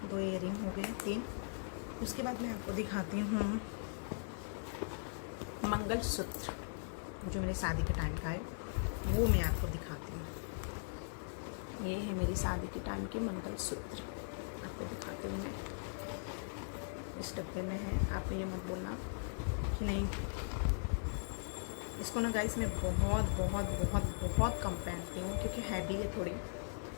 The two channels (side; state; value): right; silent; 52 dB below the other